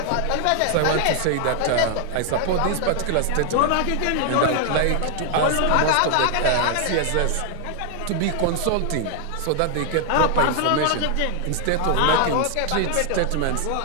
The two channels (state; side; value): different; both; correlation 0.00